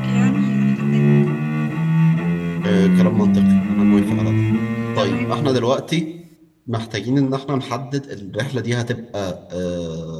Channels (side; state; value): both; identical; correlation 1.00